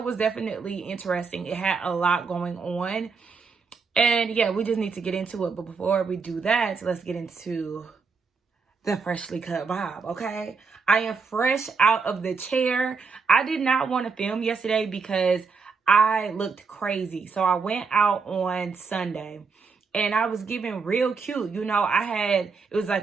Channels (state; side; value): quieter; left; 5.0 dB